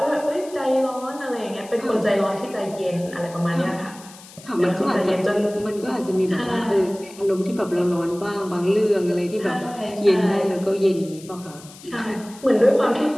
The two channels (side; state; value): left; noise; hiss, 20 dB below the sound